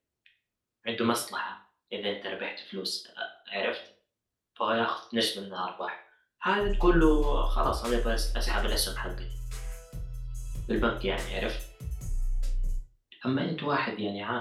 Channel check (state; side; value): identical; both; correlation 1.00